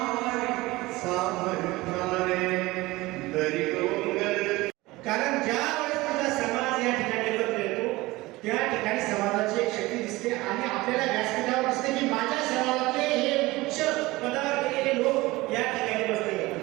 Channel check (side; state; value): left; quieter; 20.3 dB